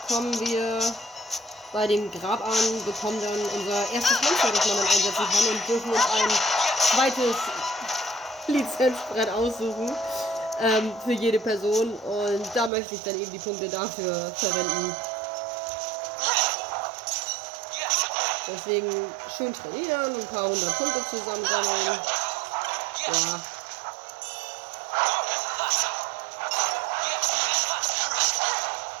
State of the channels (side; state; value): left; drops out; at 12.7 s